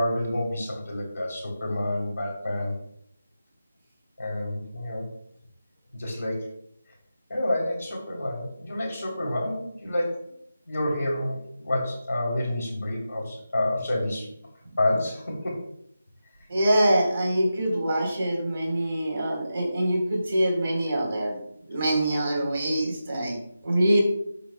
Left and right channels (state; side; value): inverted; both; correlation -0.90